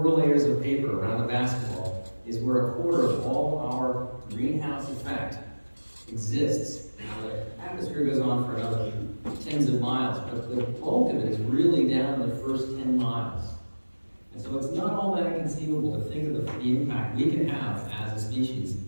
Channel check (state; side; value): inverted; both; correlation -1.00